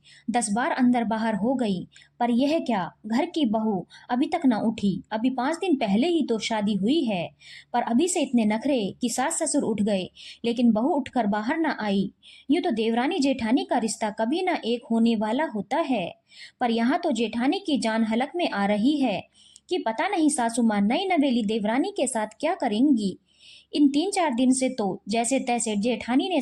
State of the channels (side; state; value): both; identical; correlation 1.00